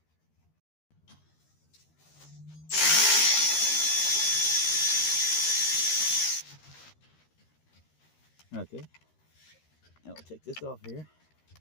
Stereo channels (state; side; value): late; right; 13 ms